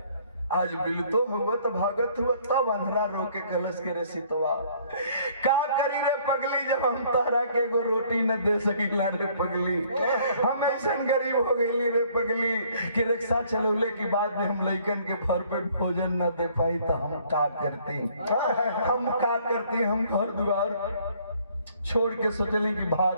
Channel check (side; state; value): both; inverted; correlation -0.60